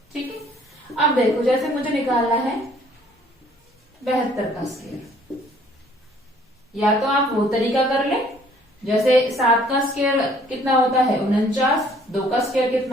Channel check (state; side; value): normal; both; correlation 0.59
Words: ठीक है, अब देखो जैसे मुझे निकालना है 72 का स्क्वायर, या तो आप वो तरीका कर लें, जैसे 7 का स्क्वायर कितना होता है 49, 2 का स्क्वायर